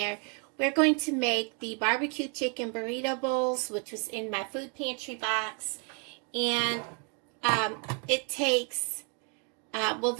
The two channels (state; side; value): quieter; left; 37.8 dB